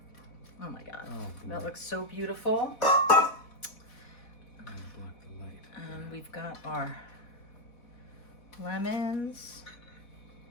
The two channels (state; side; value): late; right; 4.1 ms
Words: oh my God. Oh, That boy. looks so beautiful. I'm gonna block the light. And we've got our lemons.